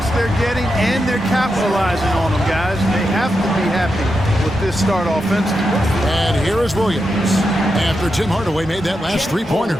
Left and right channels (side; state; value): both; normal; correlation 0.87